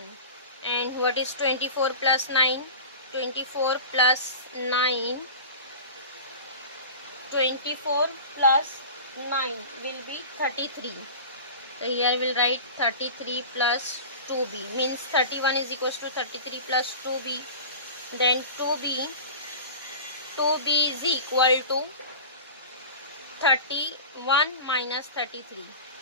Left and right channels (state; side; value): inverted; both; correlation -0.34